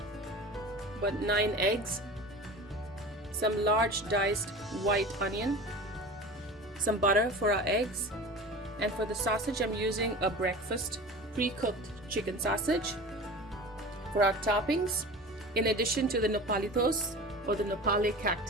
but 9 eggs, some large diced white onion, some butter for our eggs, and for the sausage I'm using a breakfast pre-cooked chicken sausage. For our toppings, in addition to the nopalitos or the nopale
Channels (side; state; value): both; normal; correlation 0.35